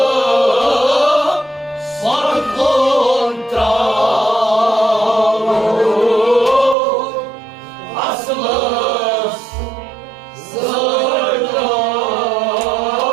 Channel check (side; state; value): left; drops out; at 6.8 s